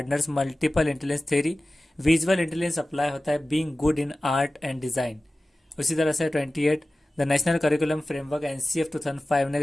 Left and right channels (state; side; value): normal; both; correlation 0.96